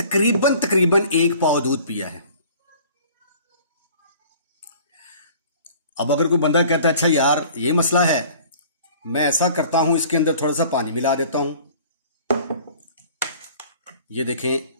1 पाव दूध पिया है। अब अगर कोई बंदा कहता है अच्छा यार ये मसला है, मैं ऐसा करता हूं, इसके अंदर थोड़ा सा पानी मिला देता हूं। ये देखें,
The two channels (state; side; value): inverted; both; correlation -0.49